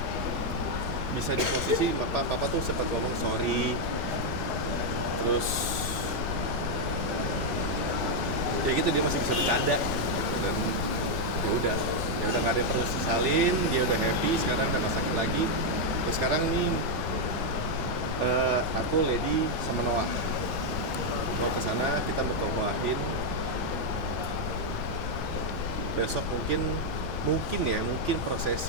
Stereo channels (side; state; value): left; noise; rumble, 4 dB below the sound